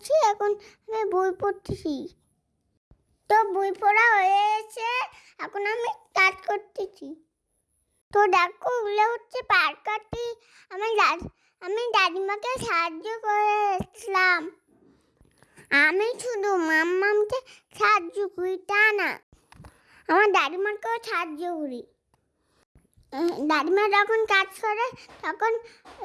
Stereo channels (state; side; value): identical; both; correlation 1.00